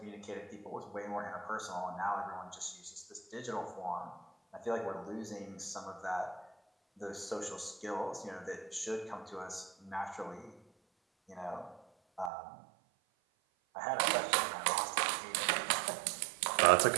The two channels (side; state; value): left; drops out; at 12.3 s